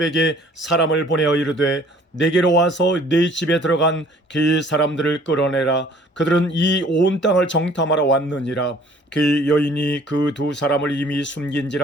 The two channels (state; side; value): normal; both; correlation 0.55